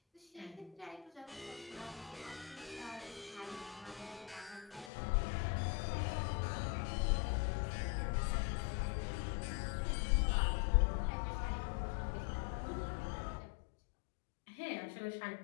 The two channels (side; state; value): right; drops out; at 4.9 s